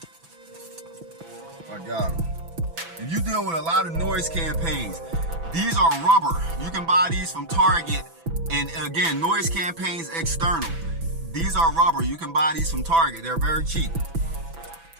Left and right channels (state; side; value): late; left; 6.0 ms